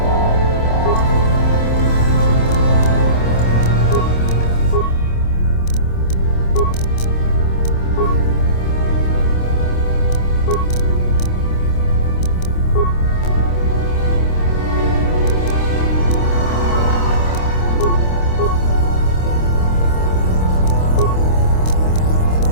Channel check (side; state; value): right; late; 26 ms